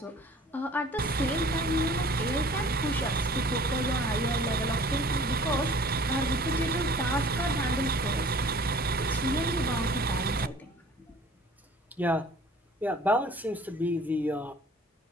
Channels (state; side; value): normal; both; correlation 0.49